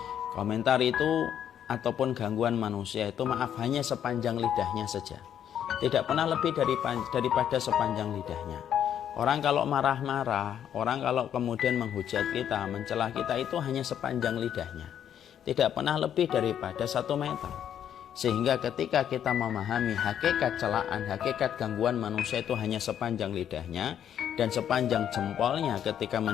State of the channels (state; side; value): quieter; right; 9.6 dB